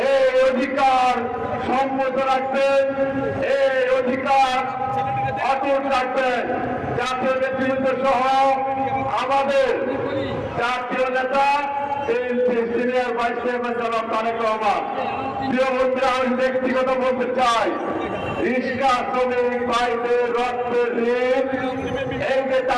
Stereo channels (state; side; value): identical; both; correlation 1.00